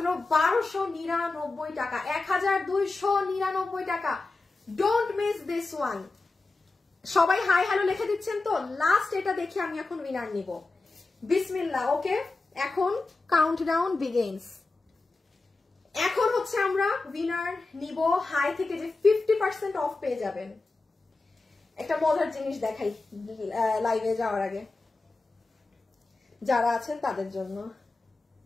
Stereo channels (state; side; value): quieter; right; 3.4 dB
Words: 1299 টাকা, 1299 টাকা। Don't miss this one. সবাই হাই হ্যালো লিখে দিচ্ছেন তো? লাস্ট এটা দেখে আমি এখন উইনার নিব। বিসমিল্লাহ। ওকে, এখন কাউন্টডাউন বিগিনস। এখন হচ্ছে আমরা উইনার নিব হাই থেকে, যে 50% অফ পেয়ে যাবেন। একটা মজার জিনিস দেখাই লাইভে যাওয়ার আগে, যারা আছেন তাদের জন্য।